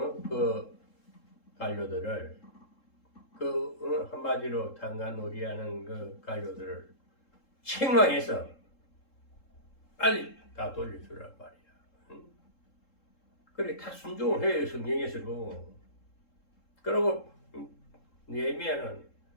관료들을, 한마디로 탄간놀이하는 그 관료들을 책망해서 빨리 다 돌려주란 말이야. 그래, 다 순종을 해요, 성경에서도. 그리고 느헤미야는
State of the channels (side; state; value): right; late; 3.7 ms